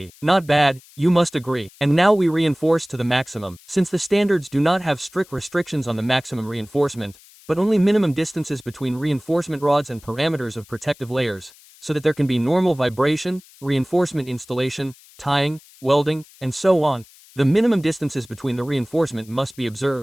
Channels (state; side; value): noise; left; hiss, 25 dB below the sound